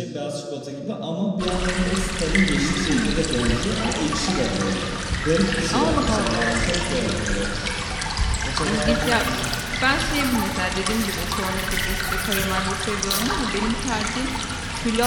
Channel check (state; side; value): identical; both; correlation 1.00